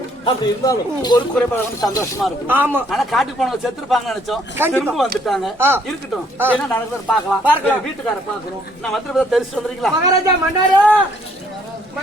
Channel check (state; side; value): normal; both; correlation 0.65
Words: அப்படி இருந்தாலும் ஒரு குறைபாடு சந்தோஷமா இருக்கும். ஆமா. ஆனா காட்டுக்கு போனவங்க செத்துருப்பாங்க நினைச்சோம். திரும்ப வந்துட்டாங்க. இருக்கட்டும் என்ன நடக்குது பாக்கலாம். வீட்டுக்கார பாக்கணும். நான் வந்து தெரிச்சு வந்துறீங்களா? மகாராஜா மன்னாரு